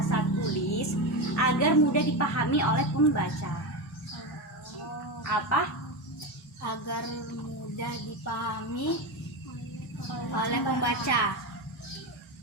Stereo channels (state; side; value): normal; both; correlation 0.16